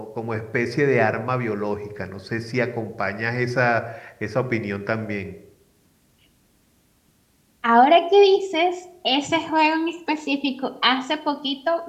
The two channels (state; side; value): identical; both; correlation 1.00